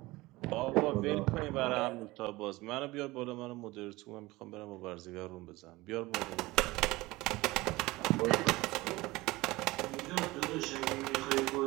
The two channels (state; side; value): quieter; left; 20.3 dB